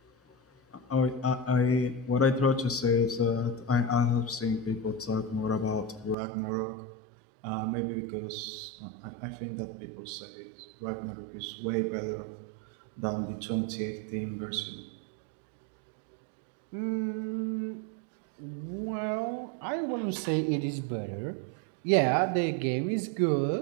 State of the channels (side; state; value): left; drops out; at 6.2 s